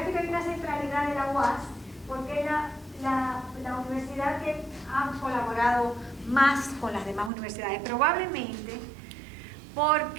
hay una centralidad de la UAS, porque es la universidad que ha colaborado más con las demás universidades, probablemente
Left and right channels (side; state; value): left; drops out; at 7.3 s